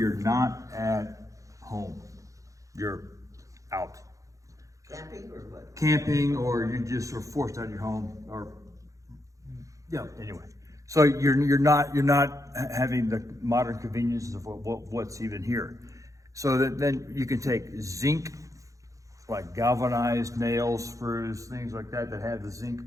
not at home. You're out. Camping or what? Camping, or you just are forced out of your home, or, yeah, anyway. So you're not having the modern conveniences of what's even here. So then you can take zinc, like galvanized nails, screws, things like that have the zinc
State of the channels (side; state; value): left; late; 0.16 ms